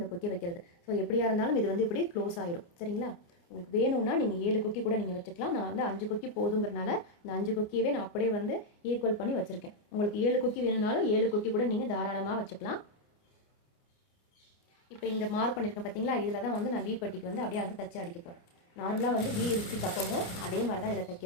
கொக்கி வைக்கிறது. ஸோ எப்படியா இருந்தாலும் இது வந்து இப்படி க்ளோஸ் ஆயிரும். சரிங்களா? உங்களுக்கு வேணும்னா நீங்கள் 7 கொக்கி கூட நீங்கள் வச்சுக்கலாம். நான் வந்து 5 கொக்கி போதுங்கிறனால இந்த 5 கொக்கியவே நான் அப்படியே வந்து ஈக்குவல் பண்ணி வச்சுருக்கேன். உங்களுக்கு 7 கொக்கி வேணும்னாலும் 7 கொக்கி கூட நீங்கள் தாராளமாக வச்சுக்கலாம். இப்போ இந்த மார்க் பண்ணியிருக்கேன் பார்த்தீங்களா, இதில் தான் வந்து நான் வி பட்டிக்கு வந்து அப்படியே வந்து தச்சு அடிக்க போகிறேன். நார்மலாக வந்து வி இருக்கு தப்பமோ அதே மாதிரி தான் இதில்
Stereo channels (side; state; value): right; late; 29 ms